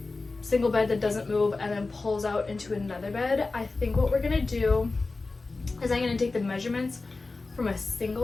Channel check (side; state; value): right; quieter; 3.6 dB